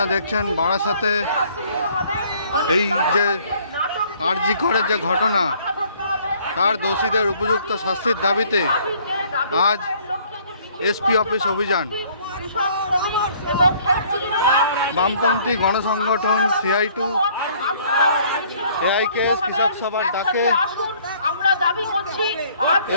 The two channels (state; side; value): inverted; both; correlation -0.59